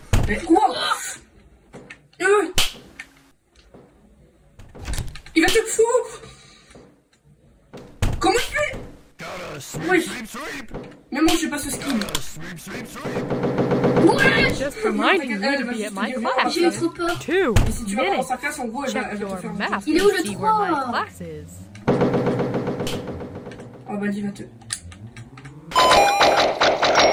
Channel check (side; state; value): both; identical; correlation 1.00